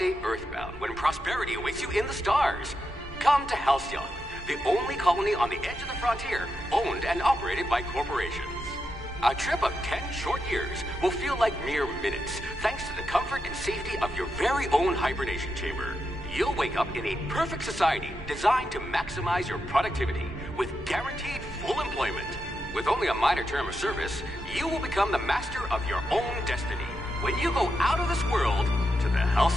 earthbound when prosperity awaits you in the stars? Come to Halcyon, the only colony on the edge of the frontier, owned and operated by corporations. A trip of 10 short years will feel like mere minutes, thanks to the comfort and safety of your very own hibernation chamber. You'll wake up in a perfect society designed to maximize your productivity with guaranteed full employment. With only a minor term of service, you will become the master of your own destiny when you go out of this world to the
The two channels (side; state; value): both; normal; correlation 0.85